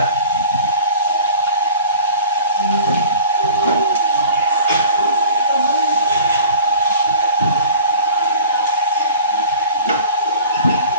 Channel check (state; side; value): inverted; both; correlation -0.44